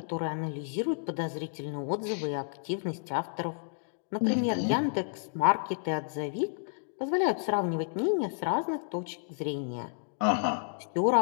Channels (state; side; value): silent; right; digital silence